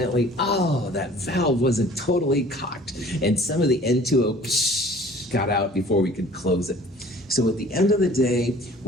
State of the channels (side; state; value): both; normal; correlation 0.49